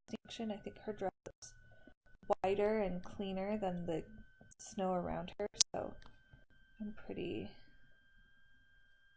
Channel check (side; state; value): both; identical; correlation 1.00